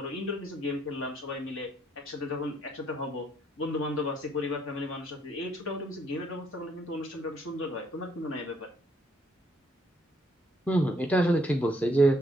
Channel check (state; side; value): normal; both; correlation 0.69